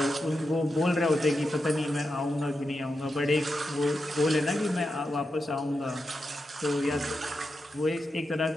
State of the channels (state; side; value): normal; both; correlation 0.88